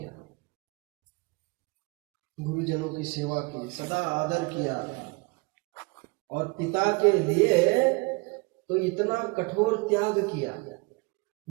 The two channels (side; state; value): left; quieter; 27.4 dB